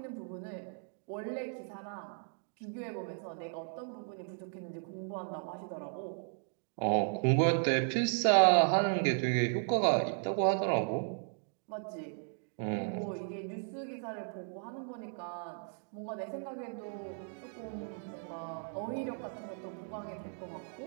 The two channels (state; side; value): silent; left; 54 dB below the other